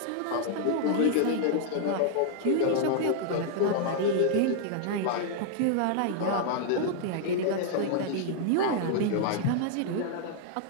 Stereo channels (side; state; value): both; different; correlation -0.01